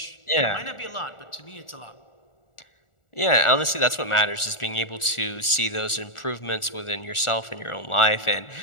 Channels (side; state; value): right; late; 1.4 ms